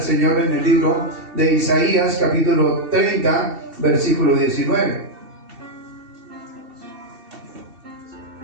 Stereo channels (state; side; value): late; left; 2.7 ms